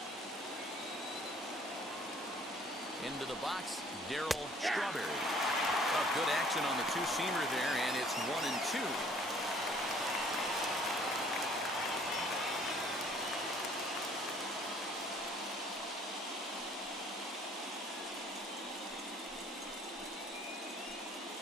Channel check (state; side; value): normal; both; correlation 0.57